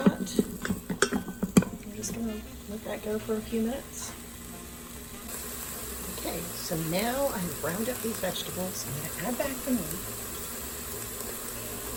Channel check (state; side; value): identical; both; correlation 1.00